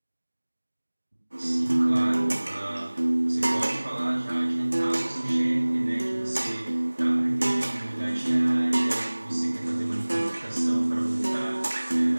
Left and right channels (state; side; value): inverted; both; correlation -1.00